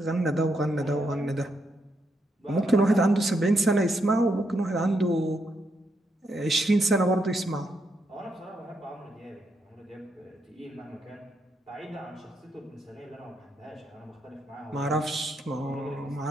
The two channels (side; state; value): both; normal; correlation 0.79